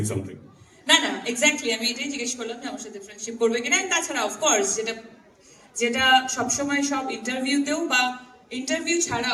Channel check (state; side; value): identical; both; correlation 1.00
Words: something. না না, এক্স্যাক্টলি আমি এটাই জিজ্ঞেস করলাম যে আমার সাথে ফ্রেন্ডশিপ করবে কিনা। তাছাড়া অফকোর্স যেটা সবসময় সব ইন্টারভিউতেও বা ইন্টারভিউ